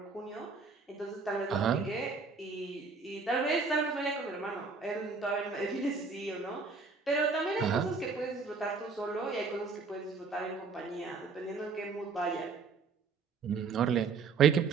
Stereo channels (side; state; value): left; quieter; 4.7 dB